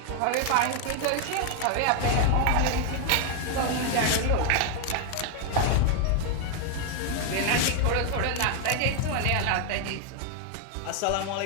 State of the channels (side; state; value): both; different; correlation 0.00